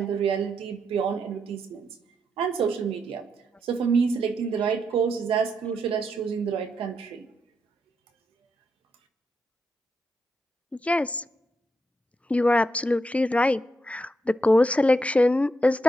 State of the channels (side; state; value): both; normal; correlation 0.81